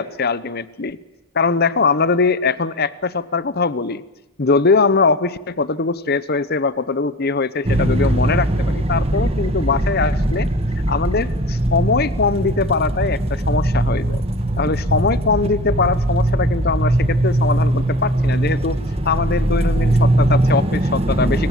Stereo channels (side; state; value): both; normal; correlation 0.35